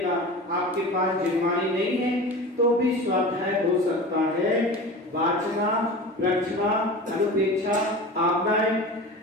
आपके पास जिम्मानी नहीं है, तो भी स्वाध्याय हो सकता है। वाचना, रचना, अनुपेक्षा, आज्ञाएं,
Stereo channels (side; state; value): both; normal; correlation 0.33